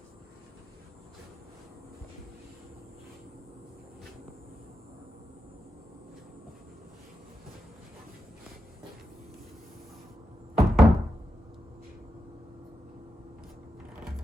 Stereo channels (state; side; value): normal; both; correlation 0.87